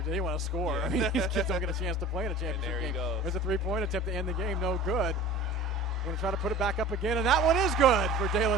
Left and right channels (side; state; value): both; normal; correlation 0.40